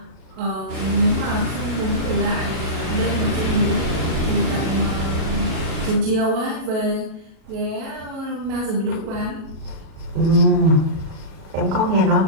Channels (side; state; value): left; late; 37 ms